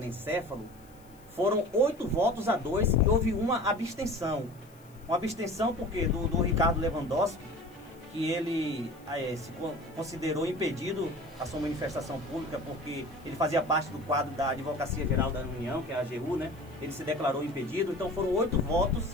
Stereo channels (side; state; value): left; noise; hiss, 29 dB below the sound